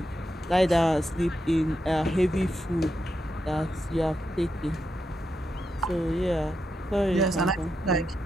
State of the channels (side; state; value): both; normal; correlation 0.85